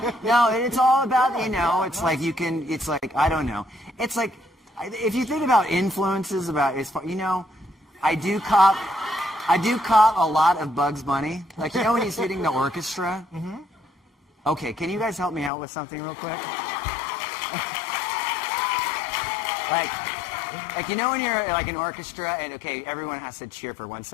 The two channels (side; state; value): right; drops out; at 15.5 s